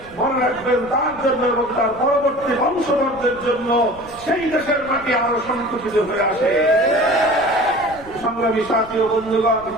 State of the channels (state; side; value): noise; left; rumble, 21 dB below the sound